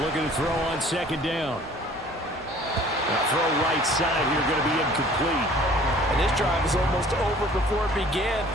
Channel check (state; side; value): normal; both; correlation 0.52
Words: looking to throw on 2nd down. Now throw right side here, going to be incomplete. And this drive is almost over before it began